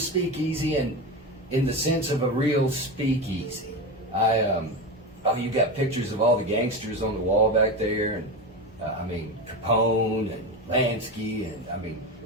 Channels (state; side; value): normal; both; correlation 0.21